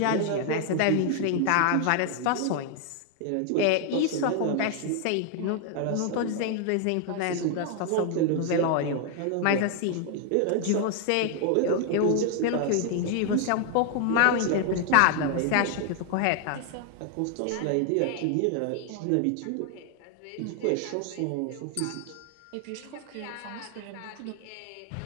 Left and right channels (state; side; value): different; both; correlation 0.00